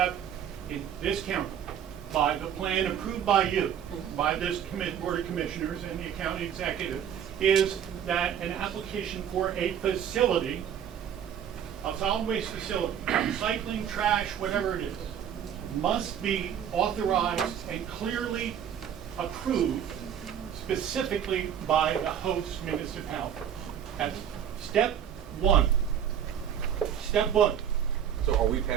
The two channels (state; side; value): quieter; left; 9.1 dB